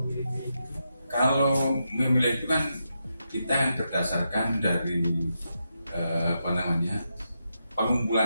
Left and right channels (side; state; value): both; inverted; correlation -0.85